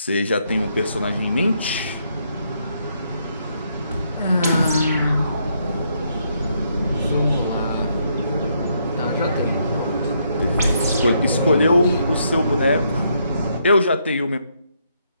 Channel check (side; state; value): both; inverted; correlation -0.75